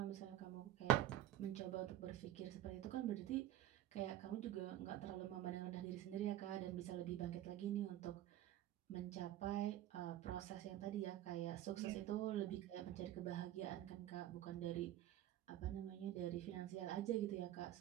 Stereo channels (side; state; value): left; quieter; 12.8 dB